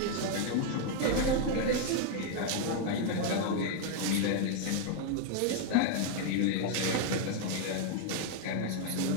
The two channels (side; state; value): both; different; correlation 0.00